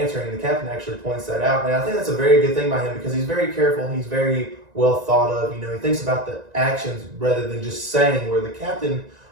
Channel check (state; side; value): late; left; 1.9 ms